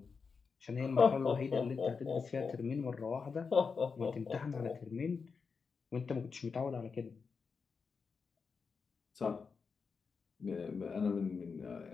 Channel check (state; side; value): quieter; right; 5.3 dB